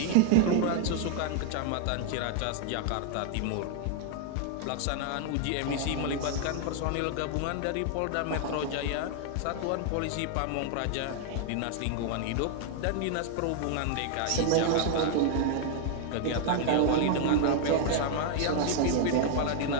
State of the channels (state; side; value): different; both; correlation 0.00